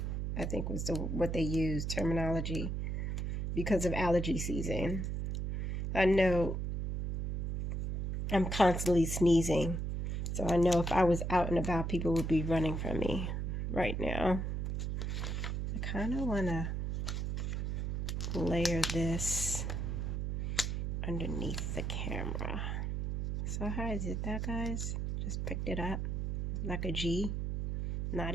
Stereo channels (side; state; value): right; noise; hum, 1 dB below the sound